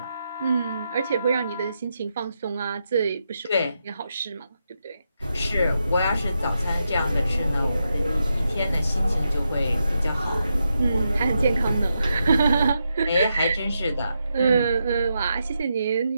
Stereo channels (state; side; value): inverted; both; correlation -0.84